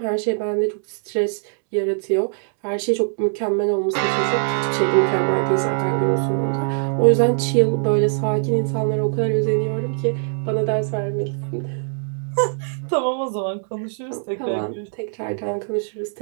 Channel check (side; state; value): left; silent; digital silence